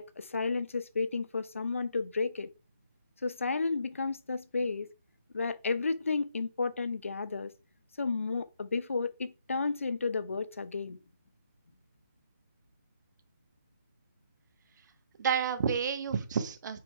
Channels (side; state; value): both; inverted; correlation -0.73